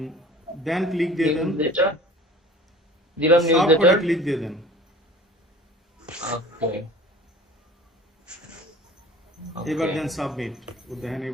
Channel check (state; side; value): normal; both; correlation 0.43